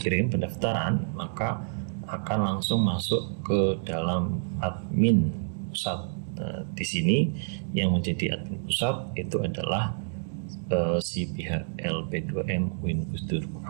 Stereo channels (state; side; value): silent; left; digital silence